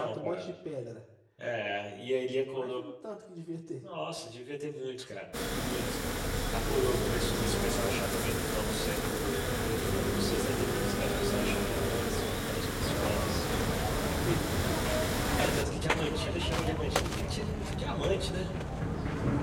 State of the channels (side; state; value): both; identical; correlation 1.00